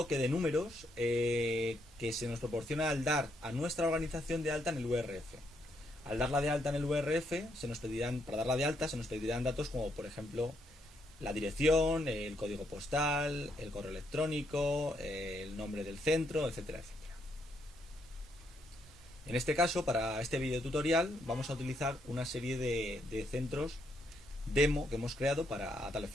de números que se nos proporciona al dar a nuestra organización de alta en el URF. Al darla de alta en el URF, para darla de alta se nos pedirán datos como, por ejemplo, la dirección, el código postal, el correo electrónico, el nombre del centro, etcétera, etcétera. En este caso, para este video tutorial, vamos a utilizar una serie de centros demo que hemos creado a tal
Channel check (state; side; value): normal; both; correlation 0.75